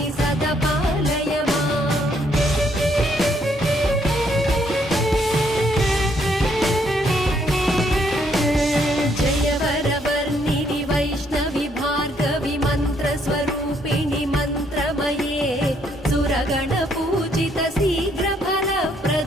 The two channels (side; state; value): both; normal; correlation 0.70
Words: सदा पालय माम्। जय वरवर्णिनि वैष्णवि भार्गवि मन्त्रस्वरूपिणि मन्त्रमये सुरगणपूजित